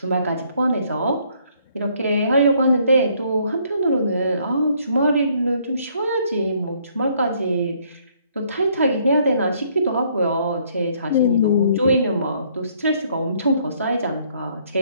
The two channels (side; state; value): both; inverted; correlation -0.66